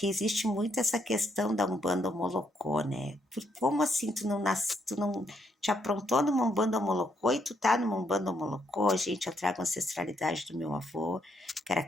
existe muito essa questão da Umbanda Molocô, né? Como assim tu não te aprontou numa Umbanda Molocô e tu tá numa Umbanda Molocô? Gente, eu trago a ancestralidade do meu avô, que era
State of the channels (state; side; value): normal; both; correlation 0.74